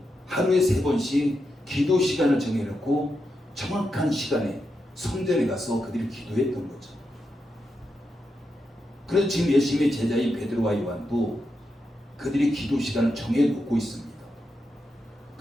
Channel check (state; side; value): normal; both; correlation 0.86